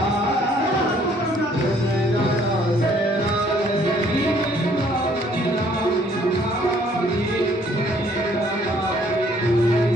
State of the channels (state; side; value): normal; both; correlation 0.62